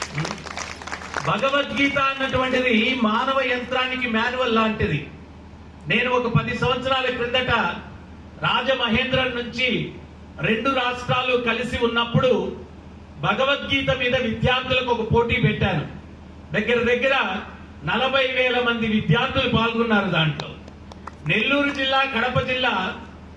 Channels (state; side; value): identical; both; correlation 1.00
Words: భగవద్గీత అన్నటువంటిది మానవ యంత్రానికి మాన్యువల్ లాంటిది. నేను ఒక 10 సంవత్సరాల క్రిందట రాజమహేంద్రం నుంచి 2 రాష్ట్రాలు కలిసి ఉన్నప్పుడు భగవద్గీత మీద విద్యార్థులకు ఒక పోటీ పెట్టాను. దగ్గర 40,000 మంది విద్యార్థులు పాల్గొన్నారు దాంట్లో. నెల్లూరు జిల్లా, కడప జిల్లా